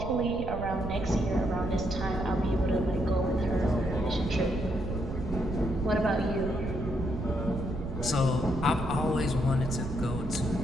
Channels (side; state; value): right; noise; rumble, 5 dB below the sound